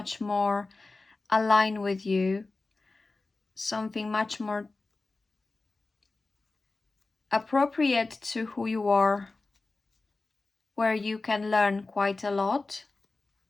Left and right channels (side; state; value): right; quieter; 3.5 dB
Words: more aligned with you. Something much more appropriate to who you are, where you can learn quite a lot.